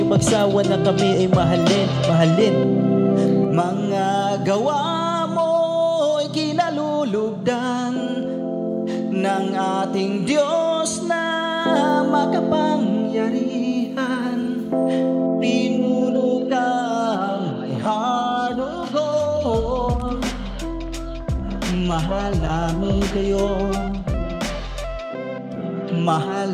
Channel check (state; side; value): identical; both; correlation 1.00